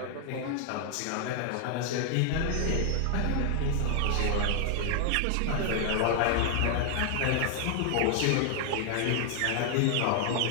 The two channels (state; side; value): different; both; correlation 0.00